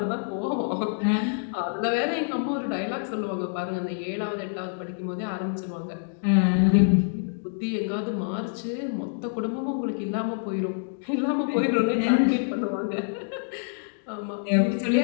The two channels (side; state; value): right; silent; digital silence